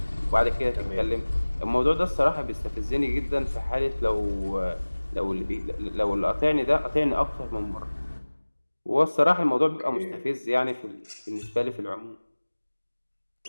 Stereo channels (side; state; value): both; inverted; correlation -1.00